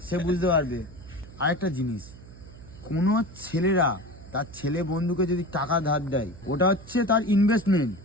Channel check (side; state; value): right; noise; hum, 18 dB below the sound